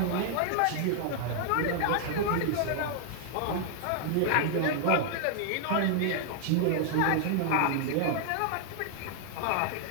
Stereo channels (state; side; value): different; both; correlation 0.00